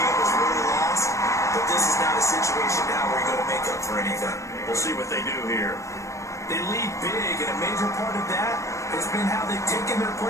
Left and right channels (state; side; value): late; right; 0.15 ms